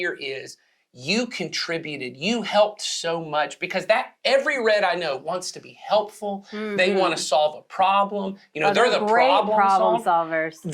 is you contributed, you helped so much, because that every red I know wants to be helpful. They want to solve a problem. They're the problem solvers.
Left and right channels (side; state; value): both; identical; correlation 1.00